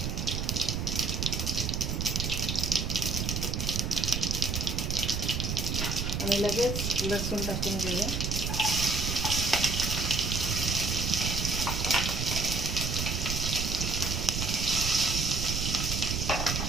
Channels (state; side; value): noise; right; rumble, 1 dB below the sound